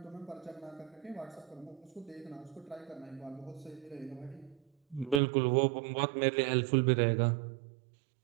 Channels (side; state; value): left; drops out; at 5.2 s